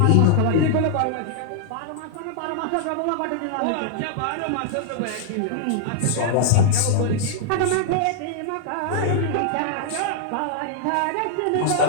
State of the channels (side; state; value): both; different; correlation -0.01